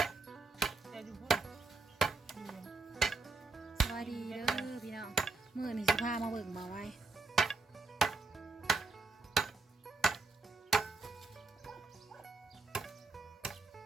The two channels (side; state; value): left; quieter; 3.7 dB